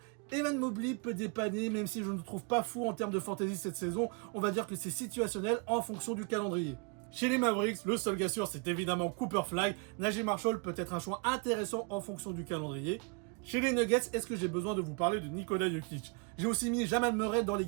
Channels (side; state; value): left; quieter; 32.0 dB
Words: Evan Mobley peut dépanner, même si je ne le trouve pas fou en termes de fantasy cette saison. On va dire que c'est situationnel en fonction du calendrier. Chez les Mavericks, le seul gars sûr, c'est évidemment Cooper Flag. Najee Marshall peut être un choix intéressant en fonction du calendrier. Chez les Nuggets, est-ce que j'ai besoin de vous parler de Nikola Jokic? J'ai aussi mis Jamal Murray dans les